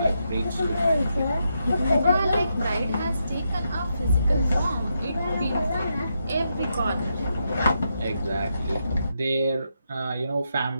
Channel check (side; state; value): both; inverted; correlation -0.82